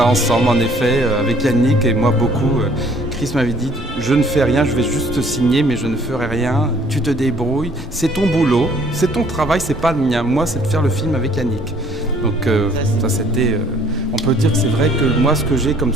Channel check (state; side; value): normal; both; correlation 0.58